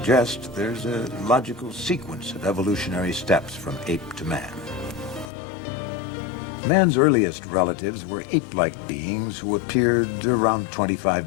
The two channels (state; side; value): drops out; right; at 5.3 s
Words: there's a logical sequence of evolutionary steps from ape to man. Man's earliest relatives were ape-like beings who appeared around